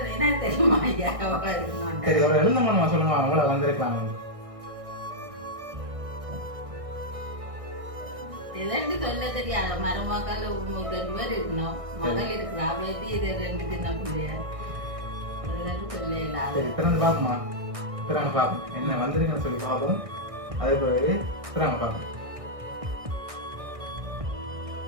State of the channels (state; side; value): late; left; 1.6 ms